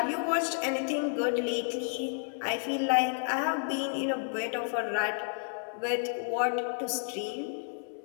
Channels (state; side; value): silent; right; 57 dB below the other